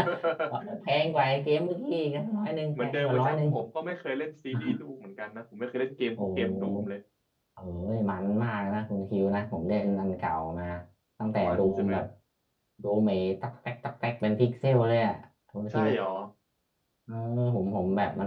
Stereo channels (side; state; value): both; identical; correlation 1.00